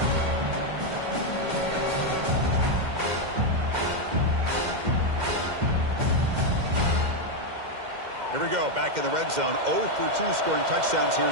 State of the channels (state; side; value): late; left; 2.1 ms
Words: Here we go, back in the red zone. 0 for 2 scoring touchdowns here